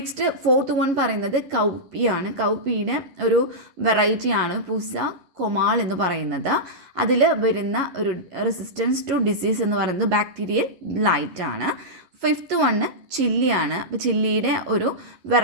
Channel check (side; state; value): left; late; 11 ms